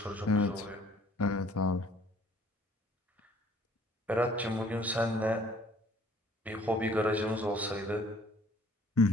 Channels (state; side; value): normal; both; correlation 0.57